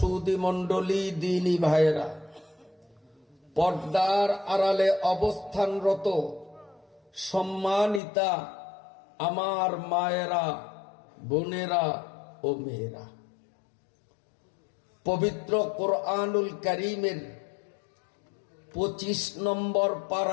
মণ্ডলী, দ্বীনী ভাইয়েরা, পর্দার আড়ালে অবস্থানরত সম্মানিতা আমার মায়েরা, বোনেরা ও মেয়েরা, পবিত্র কোরআনুল কারীমের 25 নম্বর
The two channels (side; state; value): right; drops out; at 8.0 s